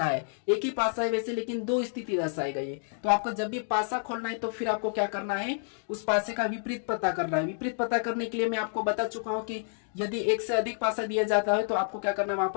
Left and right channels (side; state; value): right; silent; digital silence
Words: है। एक ही पासा है वैसे, लेकिन 2 स्थिति दर्शाई गई है। तो आपको जब भी पासा खोलना है तो फिर आपको क्या करना है, उस पासे का विपरीत पता करना है। विपरीत पता करने के लिए मैं आपको बता चुका हूं कि यदि एक से अधिक पासा दिया जाता है तो आपको क्या करना है, वहां